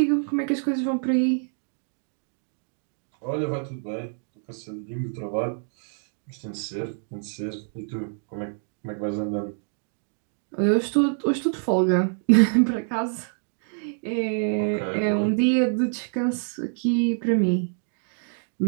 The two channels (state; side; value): silent; left; 61 dB below the other